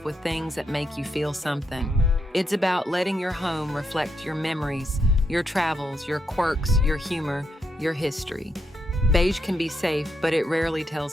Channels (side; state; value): both; normal; correlation 0.80